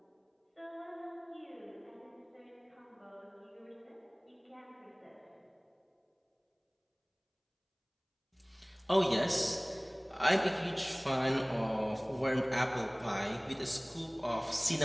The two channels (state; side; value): identical; both; correlation 1.00